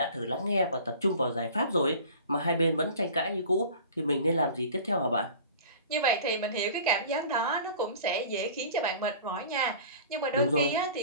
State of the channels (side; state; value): both; inverted; correlation -0.42